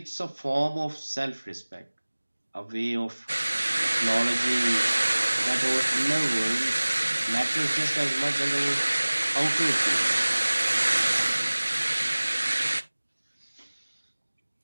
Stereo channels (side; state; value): both; inverted; correlation -1.00